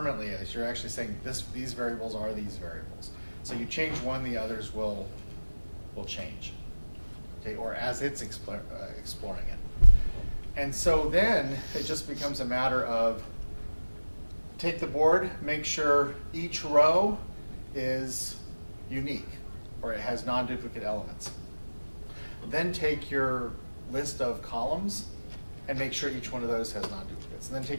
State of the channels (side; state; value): both; inverted; correlation -1.00